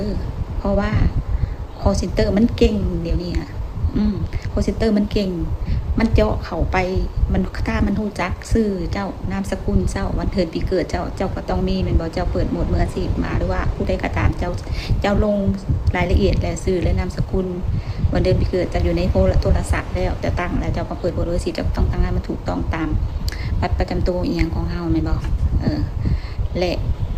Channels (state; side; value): identical; both; correlation 1.00